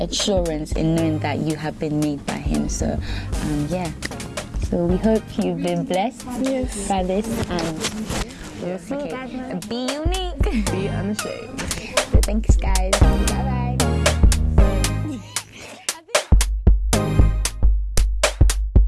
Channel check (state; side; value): identical; both; correlation 1.00